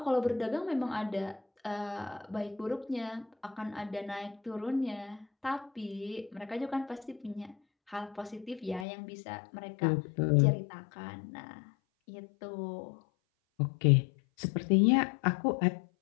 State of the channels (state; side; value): drops out; right; at 8.8 s